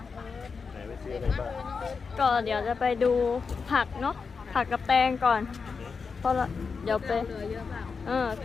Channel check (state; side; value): quieter; right; 5.2 dB